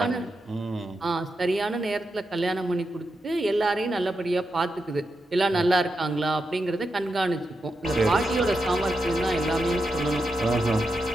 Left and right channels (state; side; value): normal; both; correlation 0.87